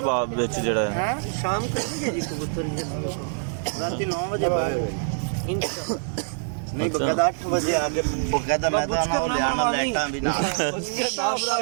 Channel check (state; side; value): silent; left; 59 dB below the other